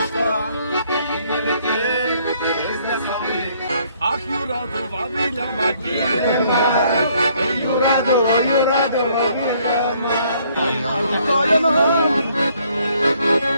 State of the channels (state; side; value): inverted; both; correlation -0.65